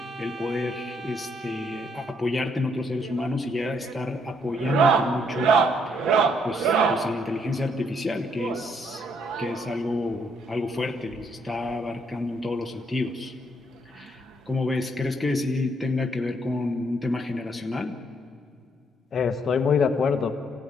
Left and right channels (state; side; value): normal; both; correlation 0.71